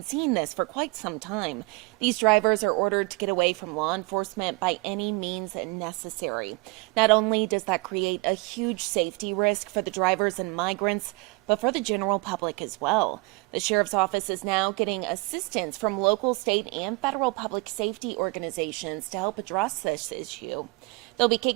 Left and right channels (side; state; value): left; quieter; 25.5 dB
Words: seeing this for quite some time. These drivers are ordered to get away from law enforcement by any means necessary. Not only does that create a huge safety risk for the drivers and migrants, but for the general public as well. The sheriff's office is now getting assistance from local, state, and federal public safety organizations to help address this issue. They'll be